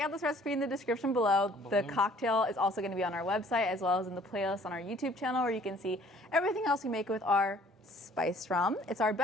this recipe in the description below. The cocktail is also going to be on our website as well as in the playlist on our YouTube channel, where you can see everything else we make with our spiced rum. It's our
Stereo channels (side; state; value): both; normal; correlation 0.56